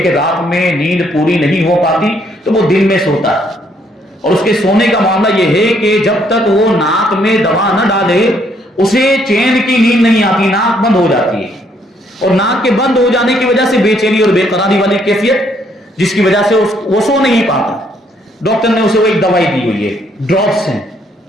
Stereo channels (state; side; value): normal; both; correlation 0.69